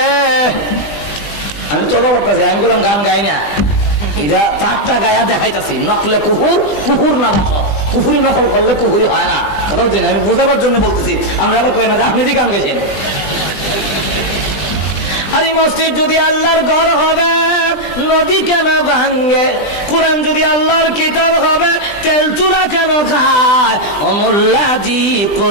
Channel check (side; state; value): right; late; 20 ms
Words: আমি তো করতেছি, আমি বললাম গান গাই না, এটা 4টা গায়া দেখাইতেছি। নকলে কুহুর, কুহুর না বাস, কুহুরি নকল করলে কুহুরি হয় না। কথা বলছি, আমি বোঝাবার জন্য বলতেছি। আমরা কই না আপনি কি গান গেছেন? আরে মসজিদ যদি আল্লাহর ঘর হবে নদী কেন ভাঙ্গে, কোরআন যদি আল্লাহর কিতাব হবে তেল চূড়া কেন খায়? অমুল্লাজি